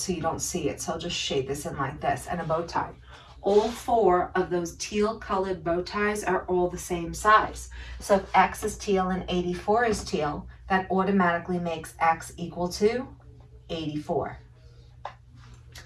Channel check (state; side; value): identical; both; correlation 1.00